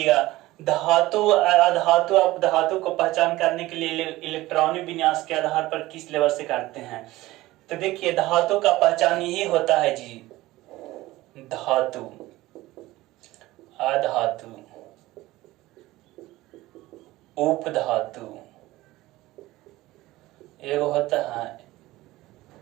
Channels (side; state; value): left; quieter; 17.9 dB